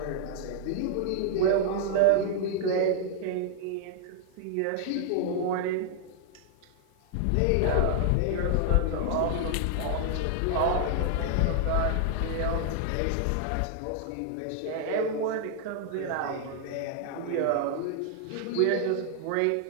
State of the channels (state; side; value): different; both; correlation -0.01